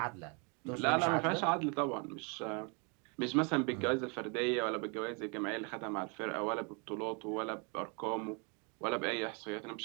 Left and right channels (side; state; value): left; quieter; 34.4 dB